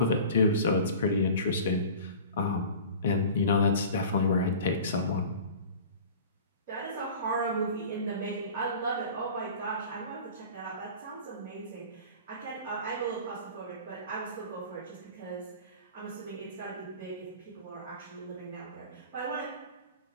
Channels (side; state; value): both; inverted; correlation -0.40